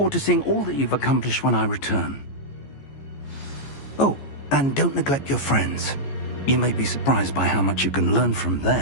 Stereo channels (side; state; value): right; late; 14 ms